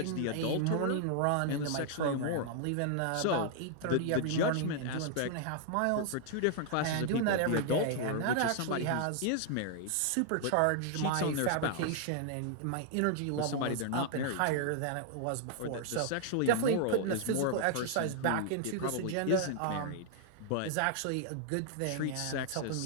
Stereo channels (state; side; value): different; both; correlation 0.00